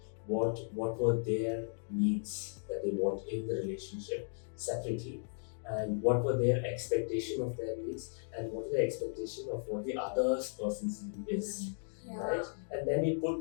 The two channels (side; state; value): right; silent; digital silence